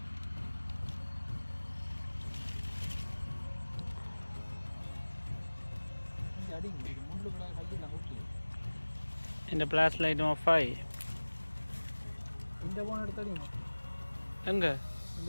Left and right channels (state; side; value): inverted; both; correlation -1.00